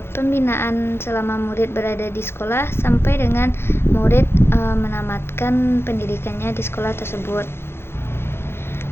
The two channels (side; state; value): right; late; 0.12 ms